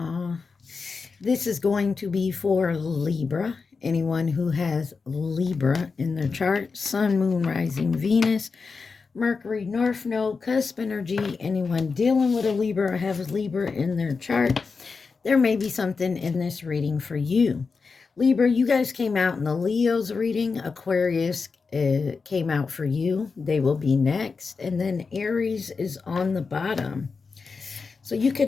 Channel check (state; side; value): quieter; right; 4.8 dB